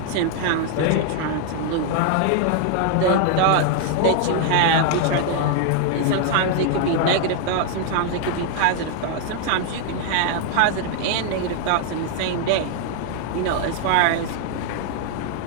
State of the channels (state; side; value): different; both; correlation 0.00